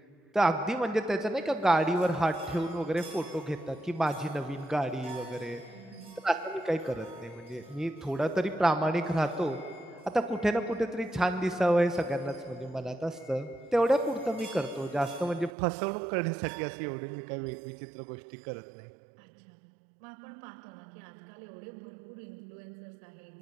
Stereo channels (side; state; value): left; drops out; at 15.5 s